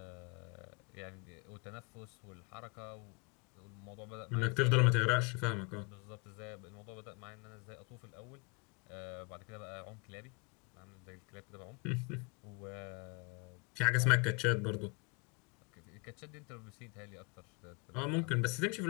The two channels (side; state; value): right; quieter; 32.2 dB